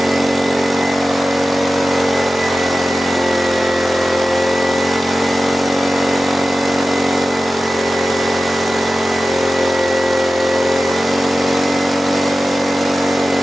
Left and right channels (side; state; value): both; normal; correlation 0.95